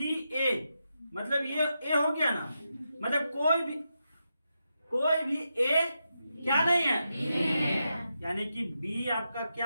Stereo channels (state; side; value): inverted; both; correlation -0.86